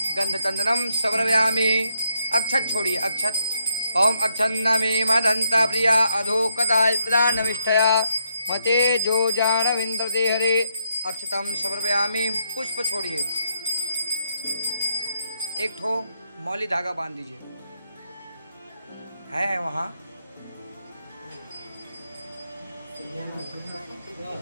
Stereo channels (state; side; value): inverted; both; correlation -0.79